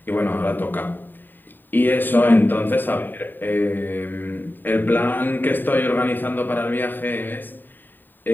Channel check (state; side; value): late; right; 0.092 ms